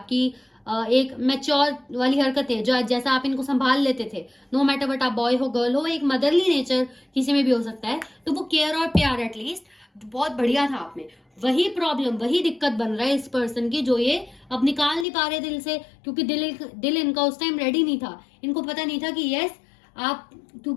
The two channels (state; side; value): drops out; right; at 15.1 s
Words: एक मैच्योर वाली हरकतें जो जैसा आप इनको संभाल लेते थे, नो मैटर बट आप बॉय हो गर्ल हो, एक मदरली नेचर किसी में भी हो सकता है, तो वो केयर और प्यार एटलीस्ट बहुत बढ़िया था आप में। वही प्रॉब्लम, वही दिक्कत बन रहा है इस पर्सन की, जो ये अब निकाल नहीं पा रहे दिल से, क्योंकि दिल इनका उस टाइम रेडी नहीं था। इनको पता नहीं था कि यस आप,